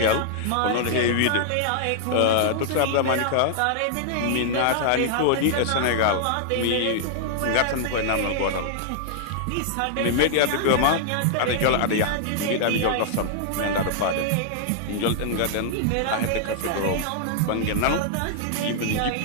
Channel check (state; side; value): different; both; correlation -0.01